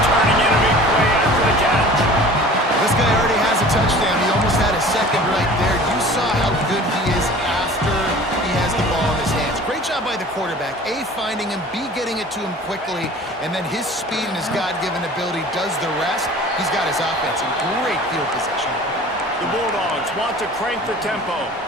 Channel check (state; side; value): normal; both; correlation 0.44